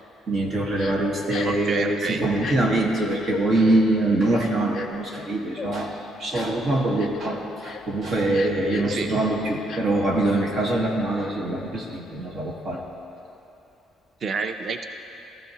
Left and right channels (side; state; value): both; normal; correlation 0.74